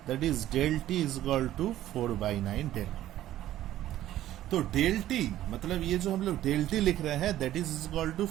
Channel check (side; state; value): left; quieter; 13.4 dB